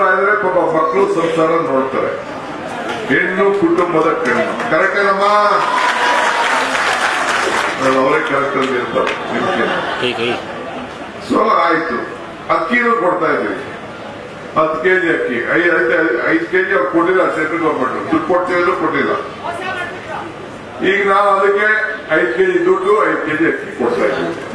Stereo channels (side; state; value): both; identical; correlation 1.00